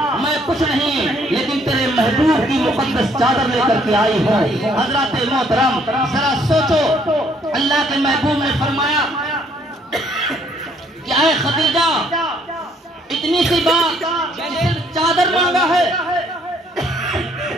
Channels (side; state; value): both; normal; correlation 0.65